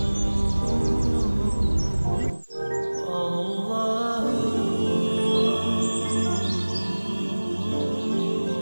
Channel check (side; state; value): both; inverted; correlation -1.00